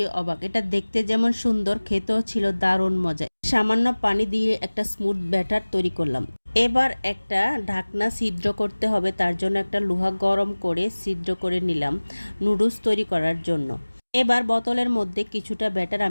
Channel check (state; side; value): inverted; both; correlation -1.00